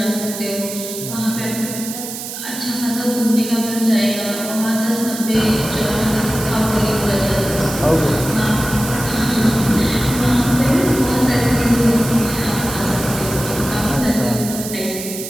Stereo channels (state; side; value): noise; right; hiss, 8 dB below the sound